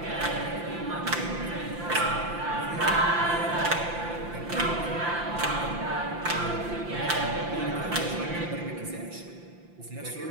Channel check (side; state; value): left; late; 5.8 ms